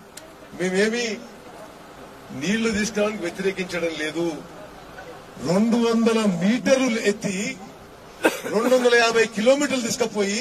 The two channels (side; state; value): both; identical; correlation 1.00